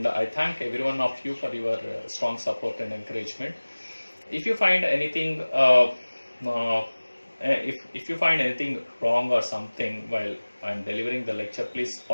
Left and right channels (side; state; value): both; inverted; correlation -1.00